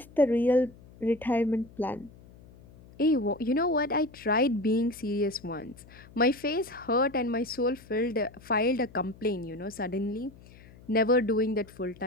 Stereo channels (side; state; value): left; noise; hum, 22 dB below the sound